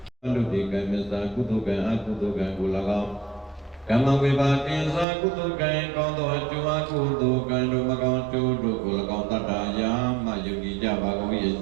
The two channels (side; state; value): left; drops out; at 5.1 s